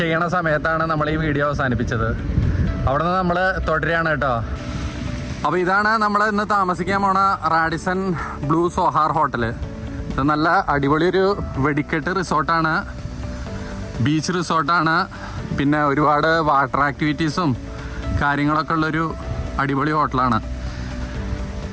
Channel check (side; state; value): both; identical; correlation 1.00